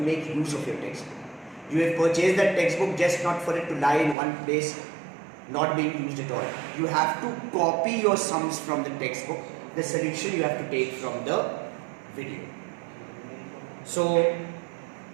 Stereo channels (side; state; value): left; drops out; at 4.2 s